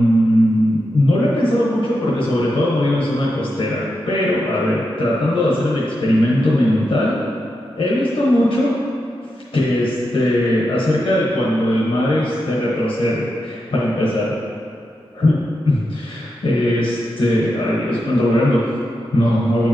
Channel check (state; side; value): normal; both; correlation 0.87